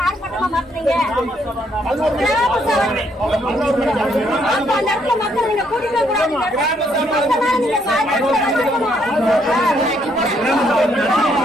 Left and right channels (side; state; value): both; normal; correlation 0.71